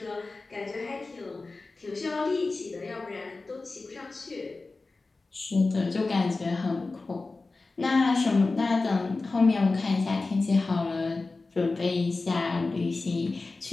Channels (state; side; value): quieter; right; 3.6 dB